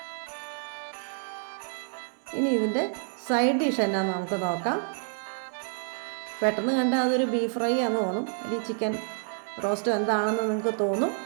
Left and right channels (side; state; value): left; silent; 59 dB below the other